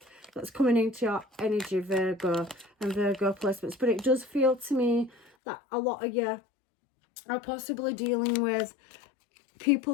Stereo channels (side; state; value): right; drops out; at 5.3 s